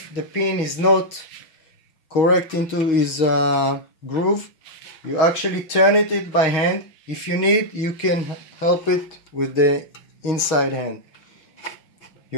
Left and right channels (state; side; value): late; right; 6.3 ms